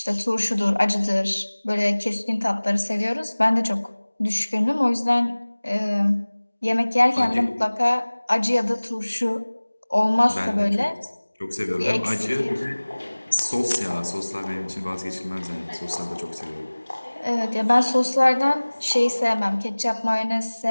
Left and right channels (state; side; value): inverted; both; correlation -1.00